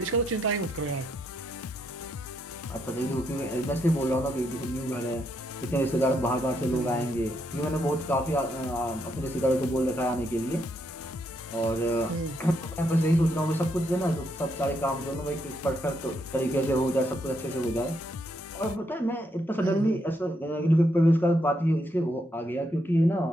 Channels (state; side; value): normal; both; correlation 0.77